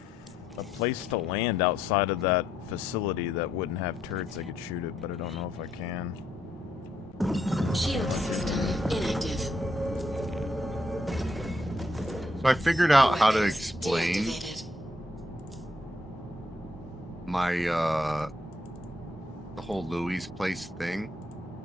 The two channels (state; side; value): normal; both; correlation 0.75